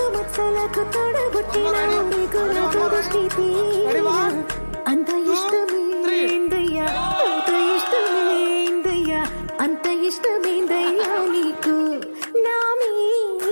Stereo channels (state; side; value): inverted; both; correlation -1.00